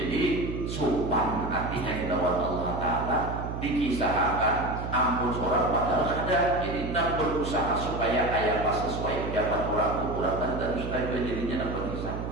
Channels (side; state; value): right; noise; hum, 5 dB below the sound